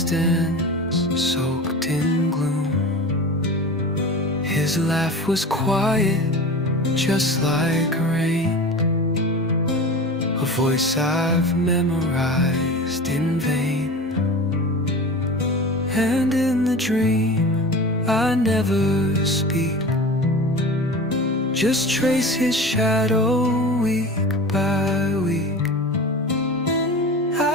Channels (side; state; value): both; normal; correlation 0.33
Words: soaked in gloom. His laugh was quiet, just like rain, a voice I've memorized in vain. And in the dream I never speak, just trace his shadow week by week.